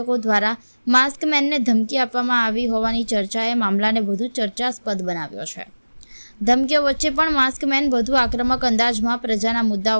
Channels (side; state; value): both; inverted; correlation -1.00